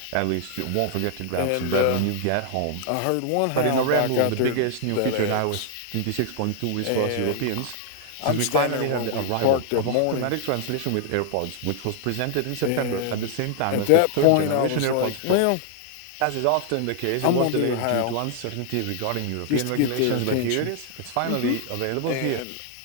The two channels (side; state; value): both; different; correlation 0.00